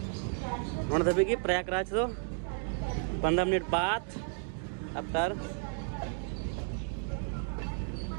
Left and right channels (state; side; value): silent; left; 56 dB below the other